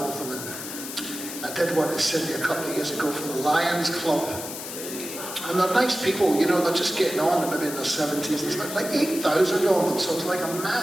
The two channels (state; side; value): noise; left; hiss, 8 dB below the sound